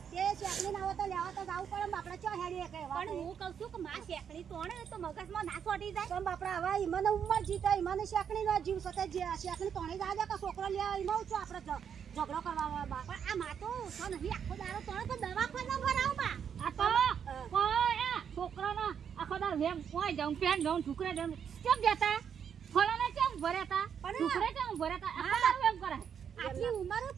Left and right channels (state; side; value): quieter; left; 7.8 dB